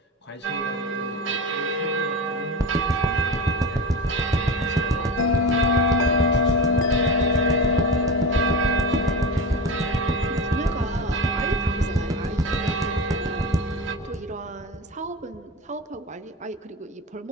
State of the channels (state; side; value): normal; both; correlation 0.25